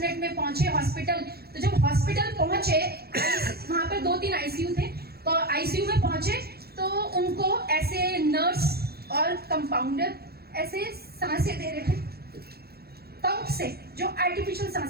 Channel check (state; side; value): late; left; 0.46 ms